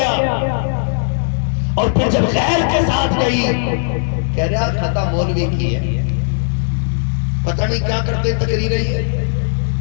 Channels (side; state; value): right; silent; digital silence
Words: اور پھر جب غیر کے ساتھ گئی، کہہ رہا خطا مولوی کی ہے، پتہ نہیں کیا کرتے تقریر رہی ہے،